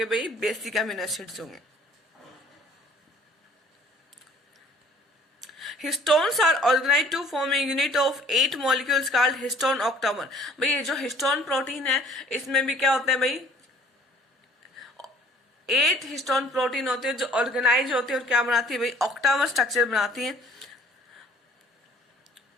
भाई, बेसिक अमीनो एसिड्स होंगे। Histones are organized to form a unit of 8 molecules called histone octamer। भाई ये जो हिस्टोन प्रोटीन है इसमें भी क्या होता है भाई, 8 हिस्टोन प्रोटीन होते हैं जो ऑर्गेनाइज होते हैं, और क्या बनाती है भाई, ऑक्टामर स्ट्रक्चर बनाती है।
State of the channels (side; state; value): both; normal; correlation 0.55